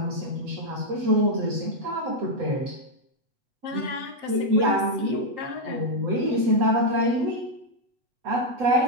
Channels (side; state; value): left; late; 7.6 ms